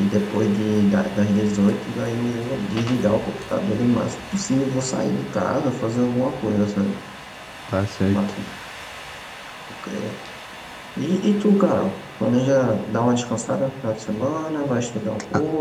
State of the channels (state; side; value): identical; both; correlation 1.00